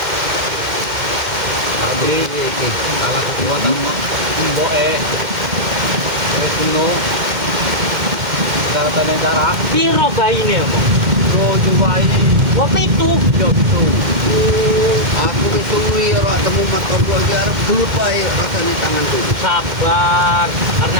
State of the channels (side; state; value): left; late; 2.1 ms